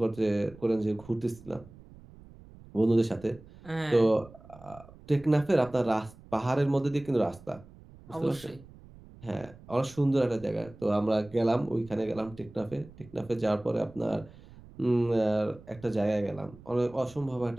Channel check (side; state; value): right; noise; rumble, 21 dB below the sound